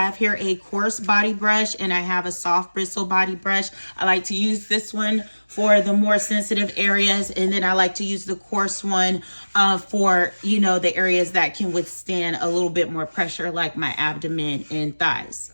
here a coarse body brush and I have a soft bristle body brush. I like to use this one for the more sensitive areas, and then I like to use the coarse one for the areas that can withstand a little bit more pressure, like my abdomen and thighs.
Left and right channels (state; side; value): inverted; both; correlation -1.00